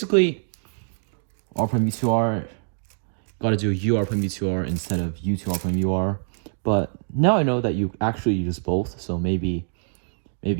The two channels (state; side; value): silent; left; 62 dB below the other